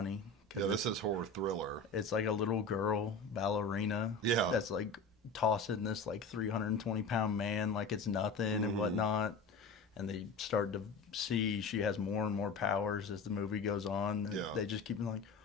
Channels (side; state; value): right; quieter; 3.7 dB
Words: 'Cause Yeah, this is horror thriller. it's like a little girl ballerina. Yeah. That's like tossing this like 320-pound man like it's nothing and whatnot. And they start to see she has more and more powers as the movie goes on. And Yeah. they just keep like,